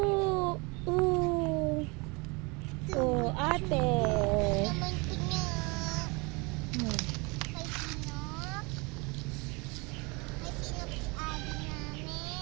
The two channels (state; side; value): quieter; left; 27.9 dB